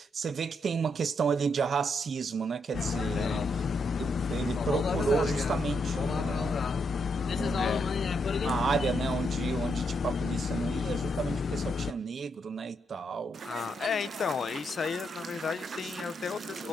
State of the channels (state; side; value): normal; both; correlation 0.79